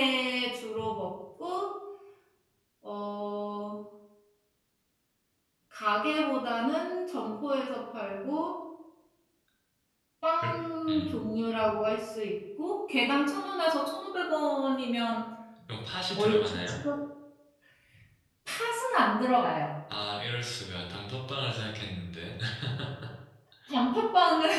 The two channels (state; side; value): identical; both; correlation 1.00